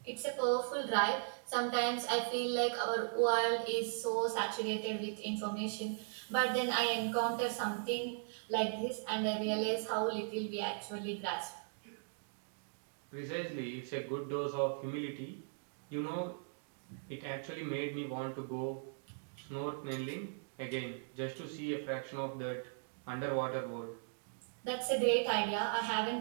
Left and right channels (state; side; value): silent; left; digital silence